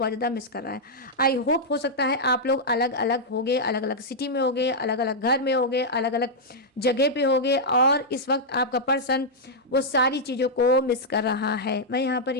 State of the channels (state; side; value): normal; both; correlation -0.06